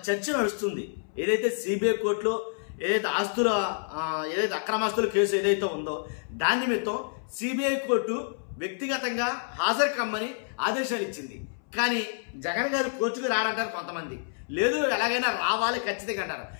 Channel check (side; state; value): right; silent; 59 dB below the other